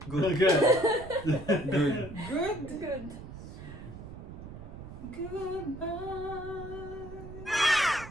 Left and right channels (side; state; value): right; noise; rumble, 12 dB below the sound